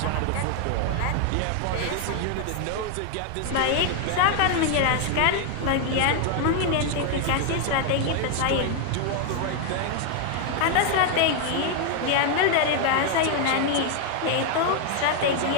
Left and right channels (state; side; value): different; both; correlation 0.00